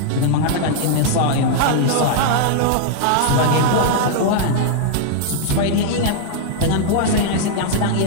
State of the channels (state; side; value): different; both; correlation -0.01